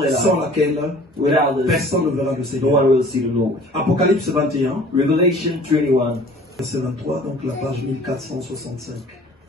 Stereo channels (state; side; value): normal; both; correlation 0.49